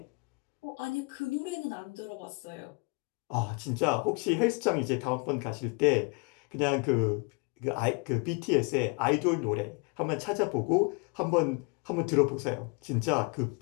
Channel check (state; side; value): quieter; right; 32.3 dB